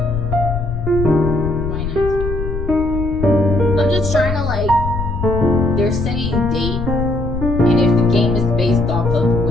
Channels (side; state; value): left; noise; rumble, 5 dB below the sound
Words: 2019. I'm just trying to they're saying date, and if the game is based off of